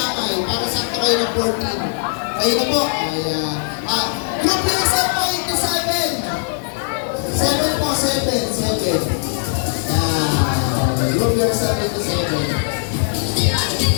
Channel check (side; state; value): right; silent; 66 dB below the other